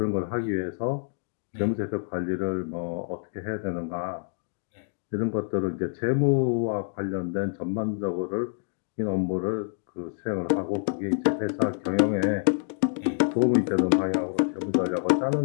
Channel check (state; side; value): silent; right; digital silence